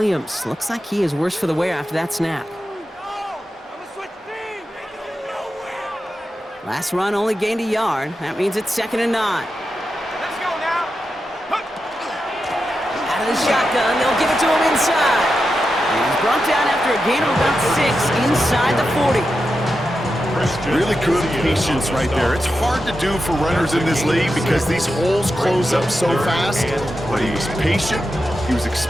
Looks like he is worse for the wear after that snap. Last run only gained a yard. That means it's 2nd and 9. Let's go now. Out of the shotgun, they'll give it to him inside. And he's brought down after a gain of about 6 inside the 40. Really good patience right there. It's hard to do for runners in this league because these holes close up so fast. But he was patient, he was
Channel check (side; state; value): both; normal; correlation 0.89